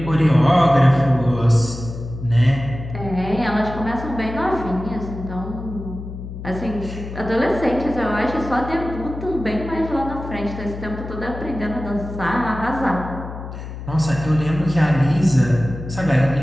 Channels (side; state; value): left; noise; hum, 10 dB below the sound